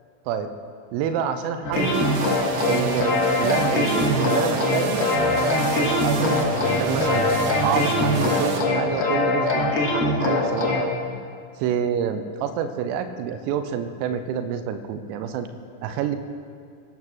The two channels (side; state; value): left; late; 38 ms